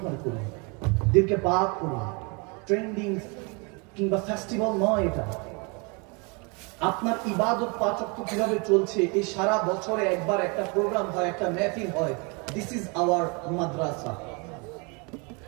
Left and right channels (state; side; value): quieter; left; 31.6 dB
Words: করুন, দিলকে পাক করুন। ট্রেন্ডিং কিংবা ফেস্টিভ্যাল নয় এটা। আপনার ইবাদত পাঁচ ওয়াক্ত কিভাবে চলছে, এই সারা বছরে একবার একটা প্রোগ্রাম হয়, একটা মেহফিল হয়। This is our Madrasa.